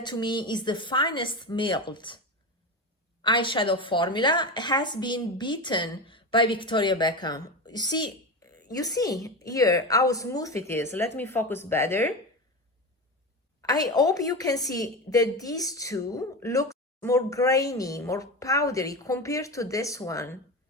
to me is the finest milled eyeshadow formula, has been beaten by Victoria Beckham. You see here how smooth it is. Let me focus better. I hope you can see that these two look more grainy, more powdery compared to this one.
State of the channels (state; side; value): normal; both; correlation 0.22